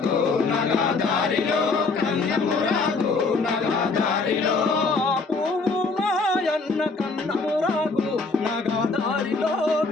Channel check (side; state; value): right; quieter; 4.0 dB